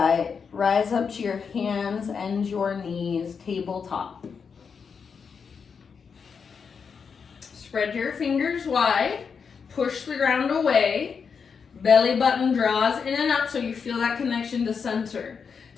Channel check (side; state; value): right; quieter; 6.0 dB